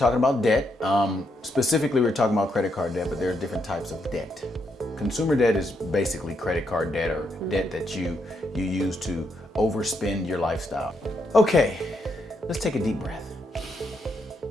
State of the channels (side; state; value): both; normal; correlation 0.78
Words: about debt. Specifically, we're talking about credit card debt, but there are different types of debt. Consumer debt is basically credit card debt or debt that you use to overspend your lifestyle. Okay, let's take a deep breath.